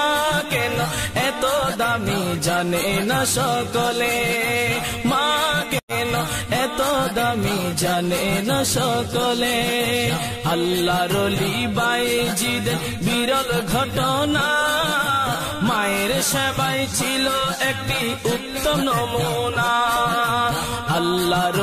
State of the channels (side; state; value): both; identical; correlation 1.00